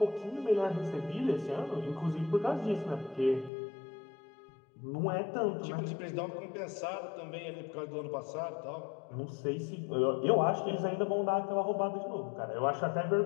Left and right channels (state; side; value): drops out; right; at 3.5 s